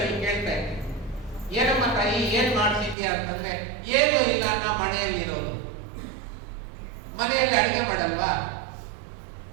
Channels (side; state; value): left; drops out; at 3.0 s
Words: ಕೇಳ್ತಾ ಇದ್ದೆ, ಏನಮ್ಮ ತಾಯಿ ಏನ್ ಮಾಡ್ತಿದ್ಯಾ ಅಂತಂದ್ರೆ, ಏನು ಇಲ್ಲ, ನಾ ಮನೆಯಲ್ಲಿ ಇರೋದು. ಮನೆಯಲ್ಲಿ ಅಡಿಗೆ ಮಾಡಲ್ವಾ,